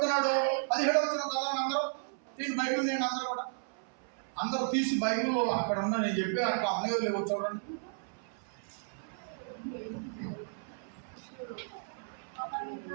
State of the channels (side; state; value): left; silent; 55 dB below the other